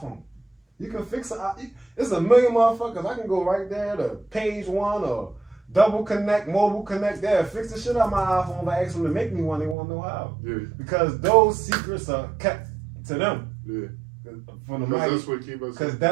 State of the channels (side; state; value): left; drops out; at 9.8 s